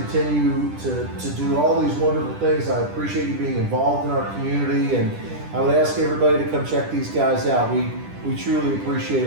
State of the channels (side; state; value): left; late; 10 ms